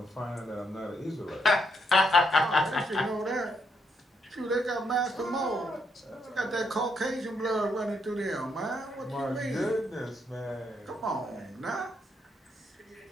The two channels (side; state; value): both; normal; correlation 0.76